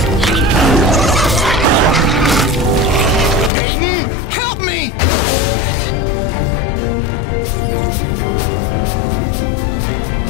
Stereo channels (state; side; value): drops out; right; at 3.5 s